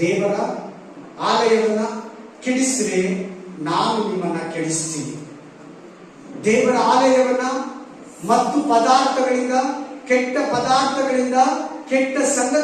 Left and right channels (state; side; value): identical; both; correlation 1.00